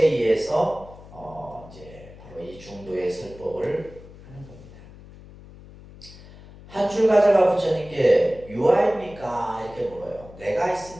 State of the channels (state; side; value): noise; left; hum, 19 dB below the sound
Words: 의해서 이제 바로 이 중도의 설법을 하는 겁니다. 한 출가자가 부처님께 유아입니까? 이렇게 물어요. 내가